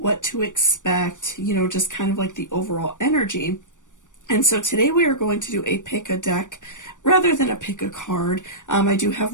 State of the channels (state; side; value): late; right; 0.87 ms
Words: to expect, just kind of like the overall energy. And so today we are going to do a pick a deck rather than a pick a card. I do have